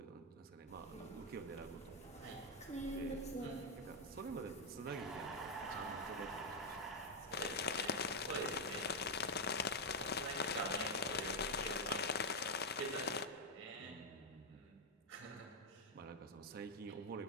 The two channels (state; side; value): normal; both; correlation 0.00